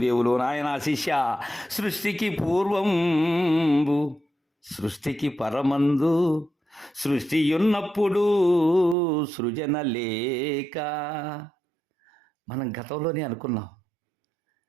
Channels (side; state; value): left; drops out; at 9.0 s